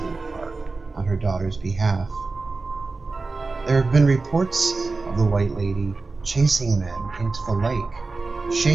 the park on her daughter's behalf. There have been reports of the White Lady chasing men into the lake,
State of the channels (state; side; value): quieter; left; 3.8 dB